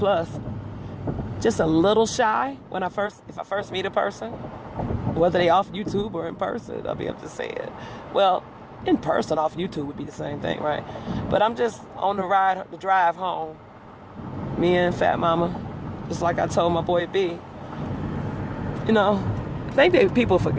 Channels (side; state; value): both; identical; correlation 1.00